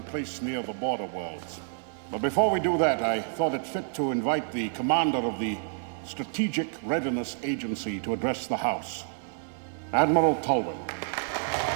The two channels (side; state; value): left; silent; 59 dB below the other